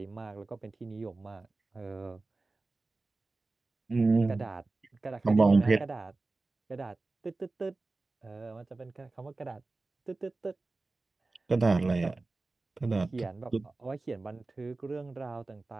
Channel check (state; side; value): quieter; left; 3.4 dB